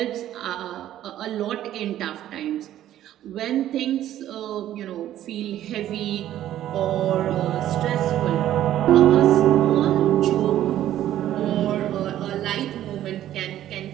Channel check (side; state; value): left; quieter; 12.5 dB